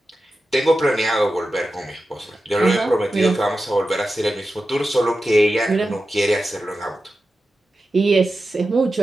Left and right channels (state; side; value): normal; both; correlation 0.92